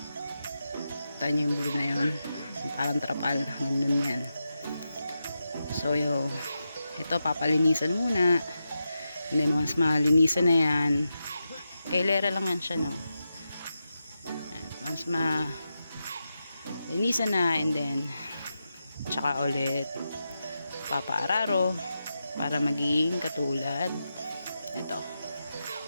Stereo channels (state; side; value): inverted; both; correlation -0.88